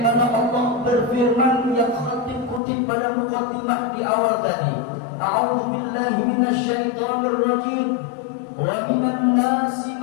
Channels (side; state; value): right; drops out; at 2.6 s